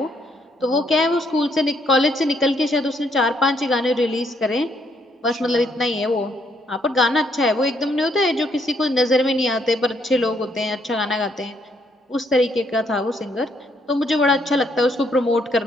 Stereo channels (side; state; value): both; normal; correlation 0.71